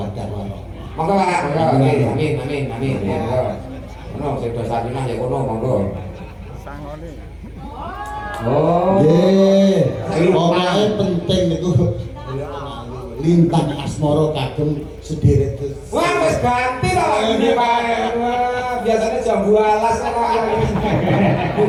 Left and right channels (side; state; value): both; identical; correlation 1.00